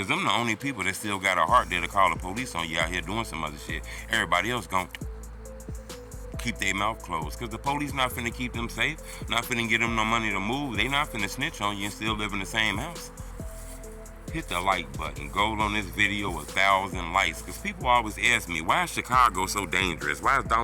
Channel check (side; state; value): both; identical; correlation 1.00